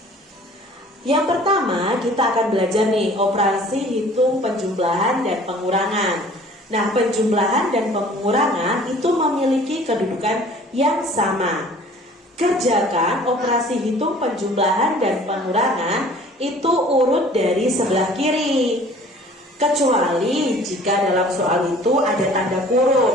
Yang pertama, kita akan belajar nih operasi hitung penjumlahan dan pengurangan. Nah, penjumlahan dan pengurangan itu memiliki kedudukan yang sama. Kerjakan operasi hitung penjumlahan dan pengurangan itu urut dari sebelah kiri. Kecuali jika dalam soal itu ada tanda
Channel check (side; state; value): both; normal; correlation 0.50